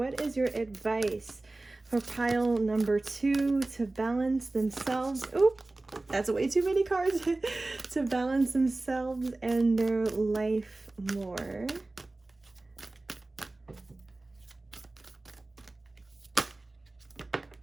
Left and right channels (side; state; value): left; quieter; 3.0 dB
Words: is your advice for pile number 2 to balance themselves? Oop, that's way too many cards. To balance themselves and their life more.